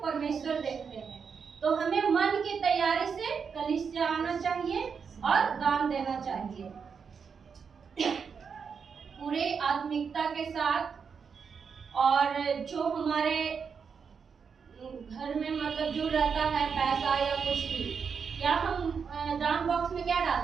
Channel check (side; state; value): left; quieter; 6.2 dB